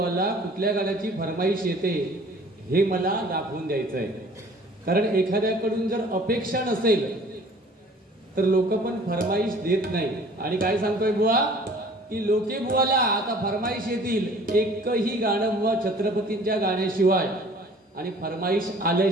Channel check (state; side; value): normal; both; correlation 0.50